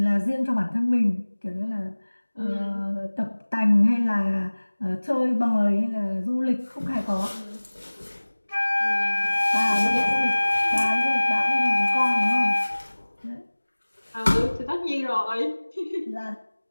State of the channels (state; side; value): inverted; both; correlation -1.00